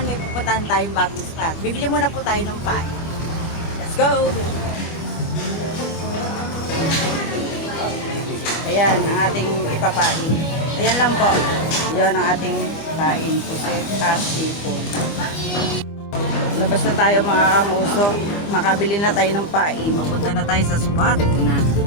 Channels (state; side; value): late; right; 25 ms